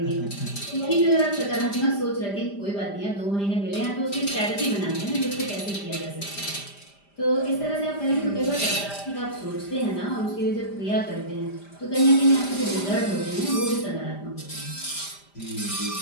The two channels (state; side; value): late; right; 5.0 ms